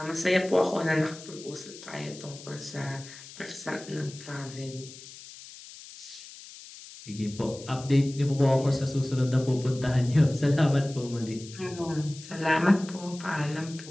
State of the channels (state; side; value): noise; left; hiss, 16 dB below the sound